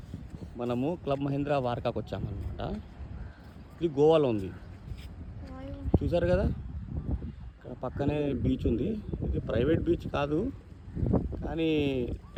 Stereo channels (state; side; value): identical; both; correlation 1.00